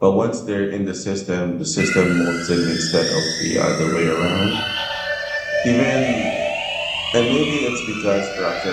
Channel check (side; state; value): both; identical; correlation 1.00